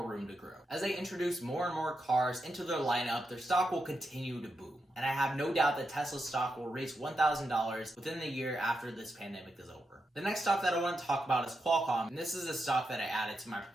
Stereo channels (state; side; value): normal; both; correlation 0.86